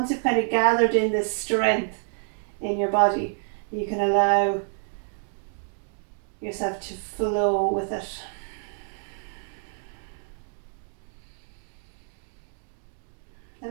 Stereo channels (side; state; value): left; silent; digital silence